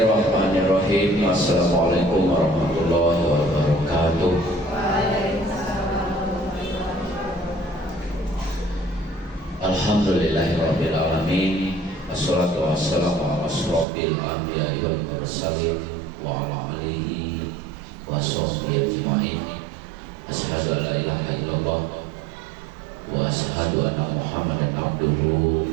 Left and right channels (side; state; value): left; drops out; at 13.9 s